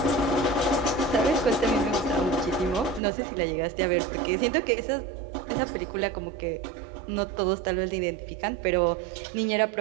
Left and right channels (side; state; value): left; drops out; at 3.0 s